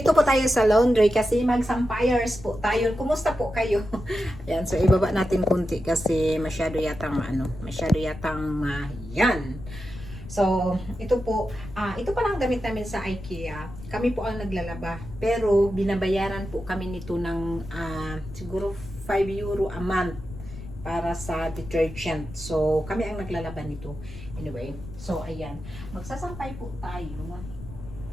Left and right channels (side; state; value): left; noise; rumble, 14 dB below the sound